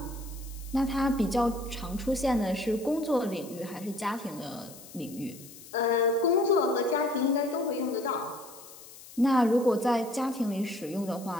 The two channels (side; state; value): left; noise; hiss, 18 dB below the sound